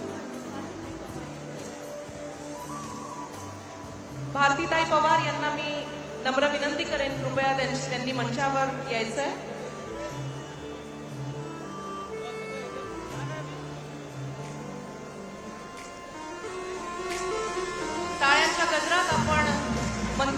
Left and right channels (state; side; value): identical; both; correlation 1.00